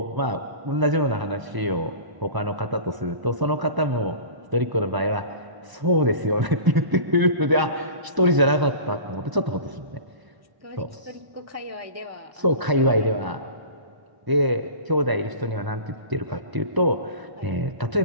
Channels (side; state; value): left; late; 1.0 ms